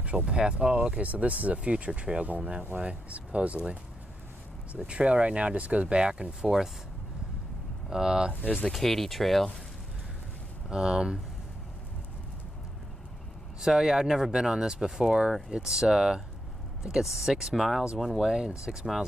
path. Oh, okay, so this is a future trail going that way, supposedly. So the trail right now just goes back and forth. There's the Katy Trail. So yeah, I've never been on this before. It's I think it's 6 miles one way and 6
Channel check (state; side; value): normal; both; correlation 0.84